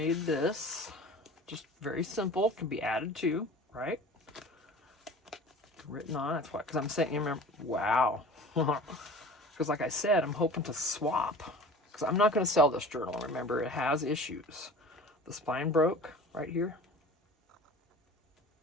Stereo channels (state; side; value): normal; both; correlation 0.40